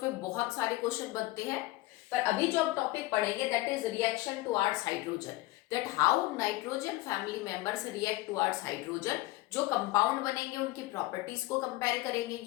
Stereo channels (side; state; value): right; quieter; 18.6 dB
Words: बहुत सारे क्वेश्चन बनते हैं। पर अभी जो हम टॉपिक पढ़ेंगे that is reaction towards hydrogen, that how nitrogen family members react towards hydrogen. जो कंपाउंड बनेंगे उनकी प्रॉपर्टीज को कंपेयर करेंगे।